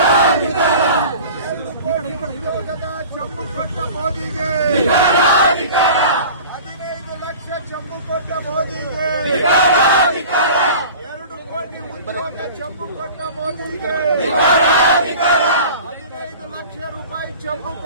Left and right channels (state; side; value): inverted; both; correlation -0.40